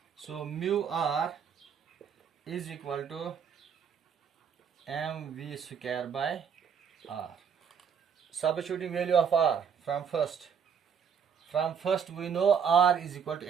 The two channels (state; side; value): quieter; left; 7.2 dB